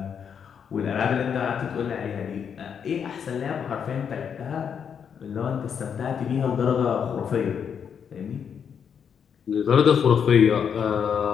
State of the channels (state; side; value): quieter; right; 7.4 dB